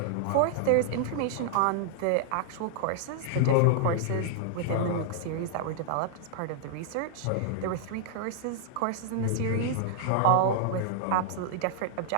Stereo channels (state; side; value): different; both; correlation -0.01